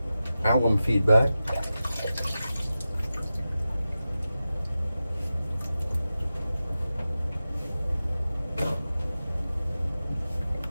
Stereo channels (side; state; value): both; inverted; correlation -0.93